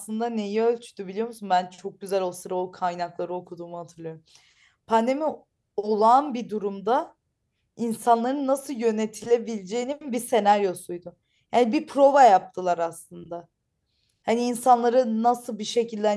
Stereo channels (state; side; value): identical; both; correlation 1.00